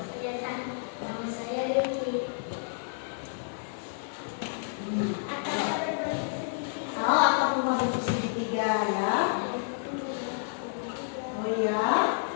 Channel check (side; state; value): right; silent; digital silence